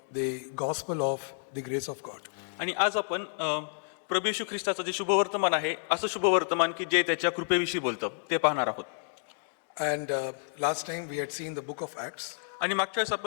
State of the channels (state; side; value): silent; right; digital silence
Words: the gospel of the grace of God. आणि आज आपण प्रभू येशू ख्रिस्ताचं जे शुभवर्तमान आहे असं शुभवर्तमान की जे त्याच्या कृपेविषयी बोलतं ते पाहणार आहोत. And last time we had seen the book of Acts, आणि मागच्या वेळेस